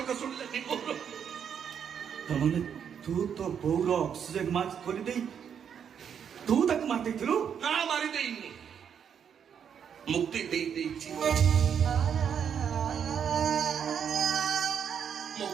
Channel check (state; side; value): quieter; left; 7.9 dB